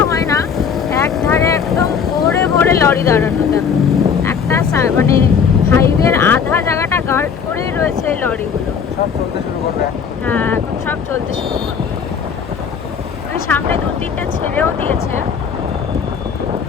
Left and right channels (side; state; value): right; quieter; 6.7 dB